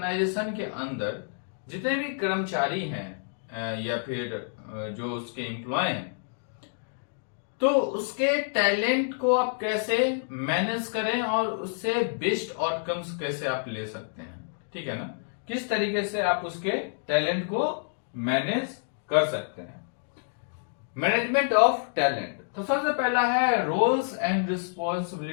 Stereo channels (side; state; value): right; silent; digital silence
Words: के अंदर जितने भी कर्मचारी हैं या फिर जो उसके एम्प्लॉय हैं, तो उसके टैलेंट को आप कैसे मैनेज करें और उससे बेस्ट आउटकम्स कैसे आप ले सकते हैं, ठीक है ना। किस तरीके से आप उसके टैलेंट को मैनेज कर सकते हैं। मैनेजमेंट ऑफ टैलेंट, तो सबसे पहला है रोल्स एंड